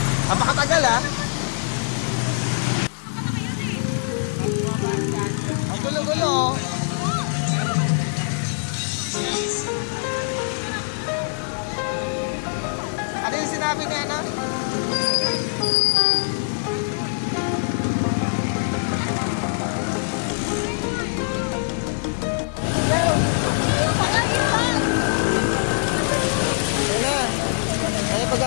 Ang makatagal ah. Ang gulo-gulo. Ano yung sinabi niya na? Ayan na. Ayan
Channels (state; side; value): silent; right; digital silence